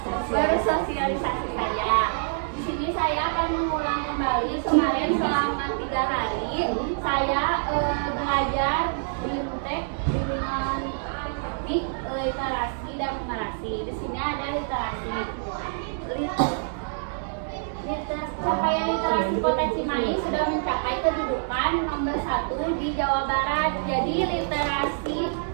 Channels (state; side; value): silent; left; 60 dB below the other